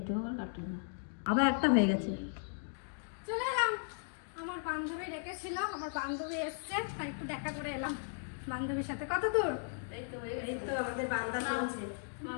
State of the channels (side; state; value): right; silent; digital silence